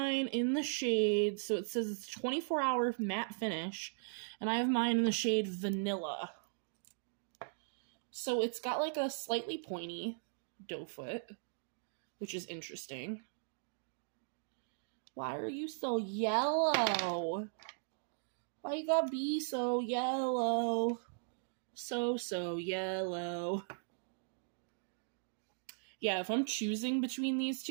in the shade, so it says it's 24-hour matte finish. And I have mine in the shade Vanilla. So it's got like a slightly pointy doe foot, which is interesting. Why are you so yellow? Why you gotta be so yellow? So yellow. Yeah, if I'm choosing between these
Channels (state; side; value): silent; left; digital silence